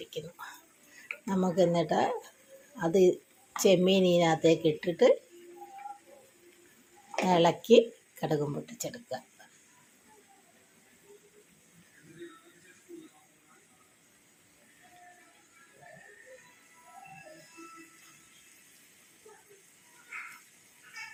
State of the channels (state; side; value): identical; both; correlation 1.00